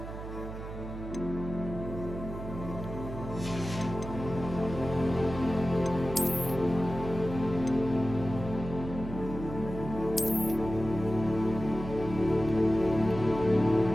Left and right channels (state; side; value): noise; right; hum, 9 dB below the sound